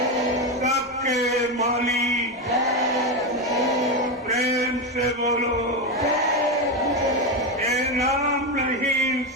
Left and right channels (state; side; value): normal; both; correlation 0.12